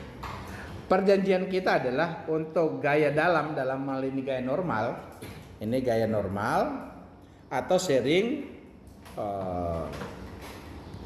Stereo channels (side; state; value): both; identical; correlation 1.00